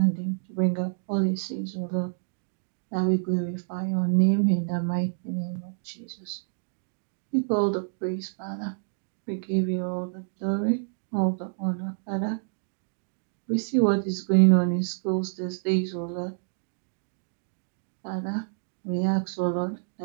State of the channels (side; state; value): left; silent; digital silence